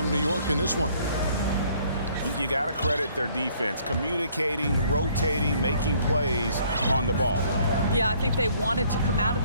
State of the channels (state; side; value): inverted; both; correlation -0.62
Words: New York in this one? You got to credit their defense, communicating, rotating, making plays on the ball. Yeah, I think they wanted to come out of